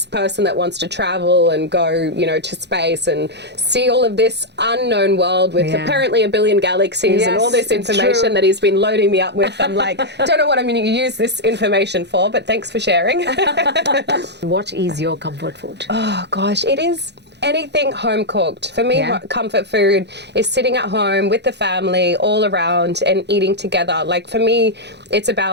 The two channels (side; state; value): left; late; 0.50 ms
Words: person that wants to travel and go, to space and see all of this unknown world with Yeah. apparently a billion galaxies and all Yes, this it's information true. that he's been loading me up with. I'm like, don't know what I'm going to use this information for, but thanks for sharing. What is your comfort food? Oh gosh, it is anything home cooked. For me, Yeah. comfort food is sitting at home with the family all around and eating together. Like for me, it's